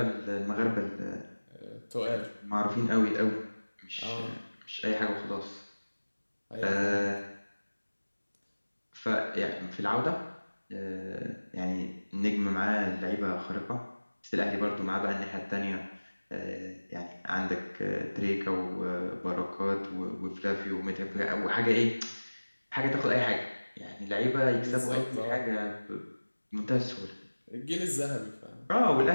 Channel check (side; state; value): both; inverted; correlation -1.00